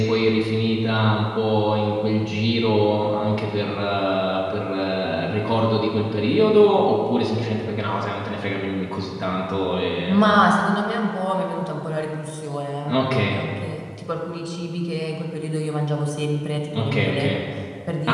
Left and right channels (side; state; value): both; identical; correlation 1.00